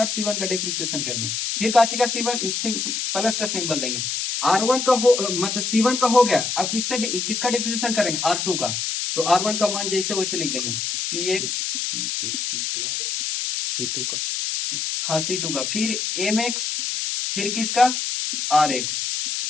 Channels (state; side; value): noise; left; hiss, 2 dB below the sound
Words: है C1 का डिप्रिसिएशन कर देंगे। फिर काची का C1 प्लस का सिंबल देंगे। R1 का हो मतलब C1 का हो गया। अब किसका डिप्रिसिएशन करेंगे R2 का, तो R1 का मान जैसे वैसे लिख देंगे PX C2 का, हाँ C2 का, फिर MX, फिर किसका RX।